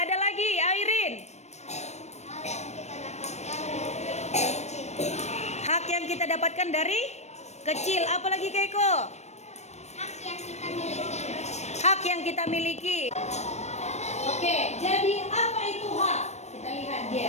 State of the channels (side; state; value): right; late; 0.32 ms